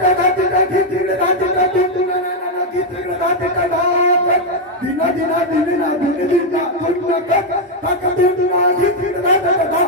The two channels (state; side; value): normal; both; correlation 0.01